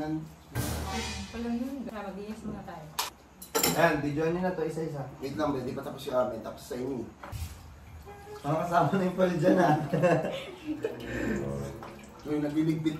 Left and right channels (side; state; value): both; identical; correlation 1.00